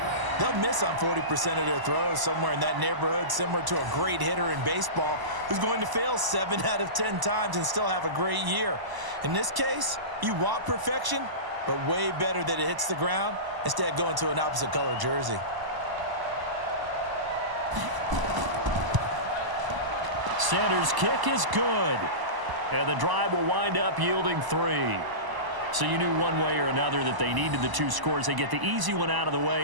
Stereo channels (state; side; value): late; left; 1.0 ms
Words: they'll miss on 40% of their throws, somewhere in that neighborhood, similar to a great hitter in baseball who's going to fail 7 out of 10 times and still have a great year. In this case, you want perfection, but way better that it hits the ground instead of going to an opposite color jersey. Sanders' kick is good, and the drive will wind up yielding 3. So you knew one way or another that they needed the 2 scores. They get the easy one out of the